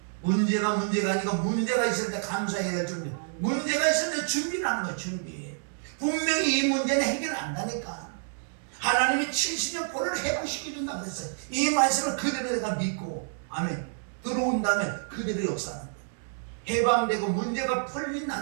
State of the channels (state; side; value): silent; left; 59 dB below the other